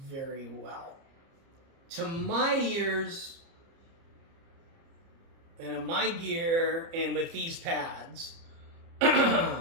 very well. To my ears, and in my gear, and with these pads,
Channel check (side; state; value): left; late; 30 ms